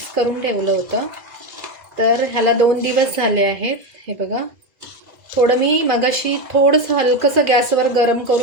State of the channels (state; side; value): late; left; 2.0 ms